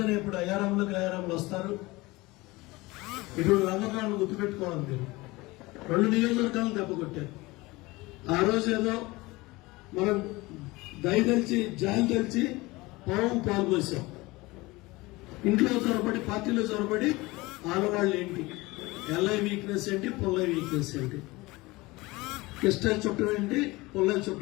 ఇప్పుడు అయారాములు వస్తారు. ఇప్పుడు రంగనాథ్ గుర్తుపెట్టుకోవాలి. మీరు 2 నియోజకవర్గాలను దెబ్బ కొట్టారు. ఆ రోజు ఏదో మనం దయ తెలిసి జాలి తెలిసి పాల్పోసాం. ఇంట్లో చొరబడి పార్టీలో చొరబడి ఆడవాళ్ళు ఏంటి, ఎల్ఐ వీక్నెస్ ఏంటి, పుల్లై వీక్నెస్ ఏంటి, కిస్టల్ చుట్టం ఏంటి, పుల్లై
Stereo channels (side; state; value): right; quieter; 21.7 dB